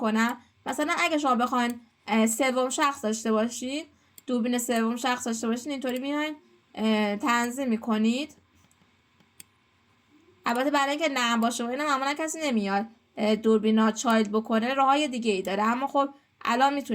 مثلا اگه شما بخواین سوم شخص داشته باشین، دوربین سوم شخص داشته باشین، اینطوری میاین تنظیم میکنید. البته برای اینکه نرم باشه و اینا معمولا کسی نمیاد دوربینا چایلد بکنه، راههای دیگه ای داره، اما خب الان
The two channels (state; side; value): identical; both; correlation 1.00